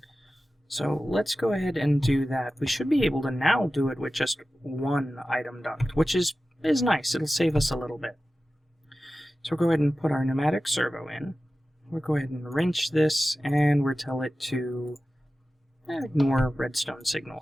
So let's go ahead and do that. We should be able to now do it with just 1 item duct, which is nice. It'll save us a little bit. So we'll go ahead and put our pneumatic servo in. We'll go ahead and wrench this, and we'll tell it to ignore redstone signal.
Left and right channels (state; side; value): normal; both; correlation 0.95